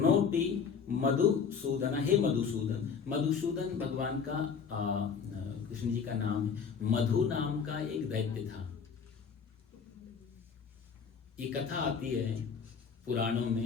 मधुसूदन, हे मधुसूदन। मधुसूदन भगवान का कृष्ण जी का नाम है। मधु नाम का एक दैत्य था। ये कथा आती है पुराणों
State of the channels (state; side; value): quieter; right; 6.3 dB